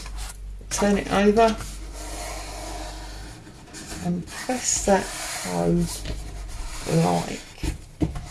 Turn it over and press that home like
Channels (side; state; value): both; identical; correlation 1.00